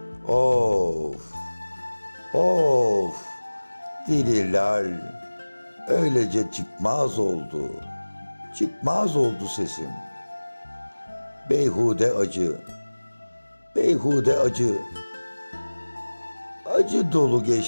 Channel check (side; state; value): both; inverted; correlation -1.00